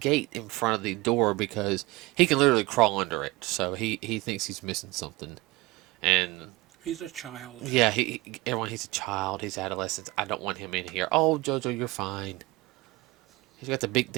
in front of the door because he can literally crawl under it. So he thinks he's missing something, and He's a child. yeah, everyone, he's a child, he's adolescent. I don't want him in here. Oh, Jojo, you're fine. He's got the big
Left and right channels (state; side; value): quieter; left; 21.4 dB